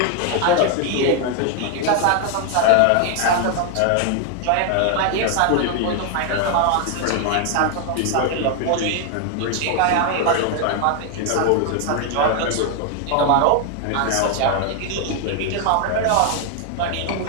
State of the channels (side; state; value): both; different; correlation 0.00